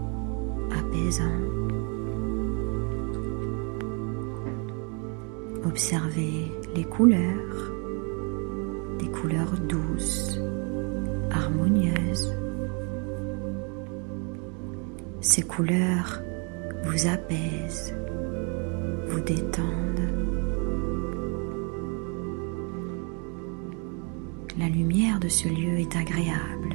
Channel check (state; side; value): quieter; left; 35.3 dB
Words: apaisant. Observez les couleurs, des couleurs douces, harmonieuses. Ces couleurs vous apaisent, vous détendent. La lumière de ce lieu est agréable,